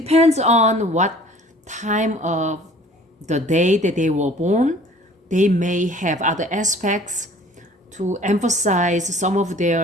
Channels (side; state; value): both; normal; correlation 0.50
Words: on what time of the day that they were born, they may have other aspects to emphasize some of